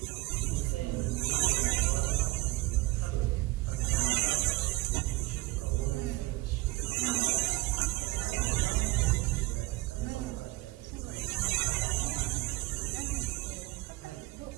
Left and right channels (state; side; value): quieter; left; 20.5 dB